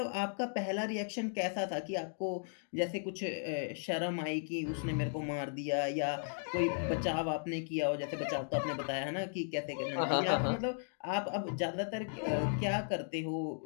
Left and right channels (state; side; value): silent; right; digital silence